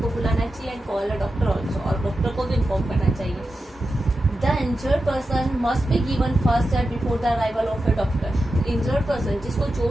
बुलाना चाहिए and call a doctor also, और डॉक्टर को भी इन्फॉर्म करना चाहिए. The injured person must be given first aid before the arrival of A doctor. Injured person जिसको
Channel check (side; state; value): both; normal; correlation 0.91